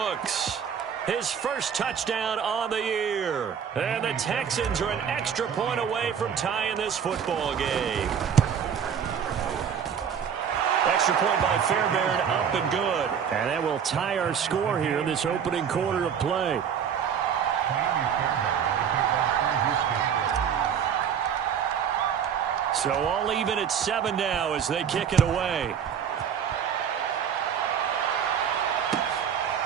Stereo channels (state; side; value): quieter; left; 7.8 dB